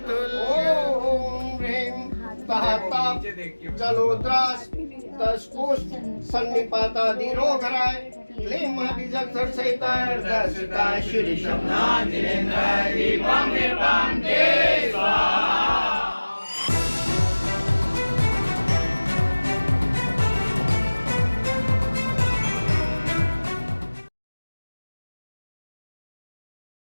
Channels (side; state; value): both; inverted; correlation -1.00